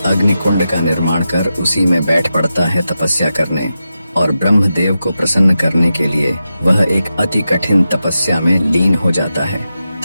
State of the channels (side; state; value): both; inverted; correlation -0.90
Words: अग्निकुंड का निर्माण कर उसी में बैठ पड़ता है तपस्या करने। और ब्रह्मदेव को प्रसन्न करने के लिए वह एक अति कठिन तपस्या में लीन हो जाता है।